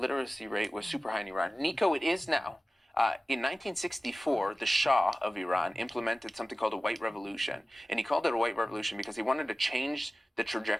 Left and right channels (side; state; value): both; normal; correlation 0.96